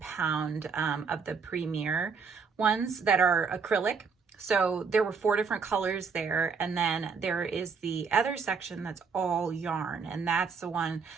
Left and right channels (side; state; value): left; quieter; 5.4 dB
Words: of the Premier ones that are acrylic. So there were 4 different colors there. And then there is the other section that's all yarn. And that's the one